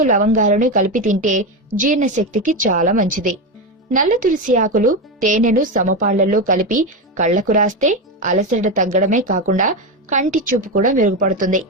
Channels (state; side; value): normal; both; correlation 0.14